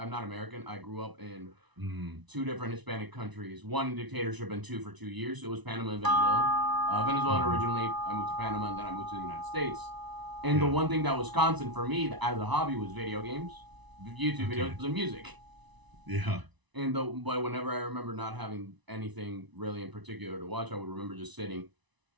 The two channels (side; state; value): left; late; 1.0 ms